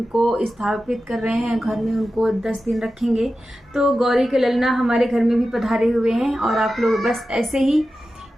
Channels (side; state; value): both; normal; correlation 0.93